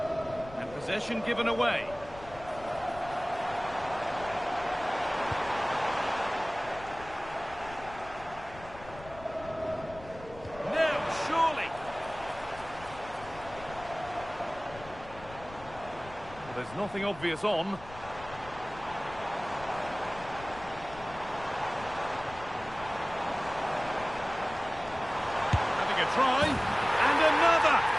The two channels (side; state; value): left; noise; rumble, 17 dB below the sound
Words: And possession given away. There's nothing obvious on.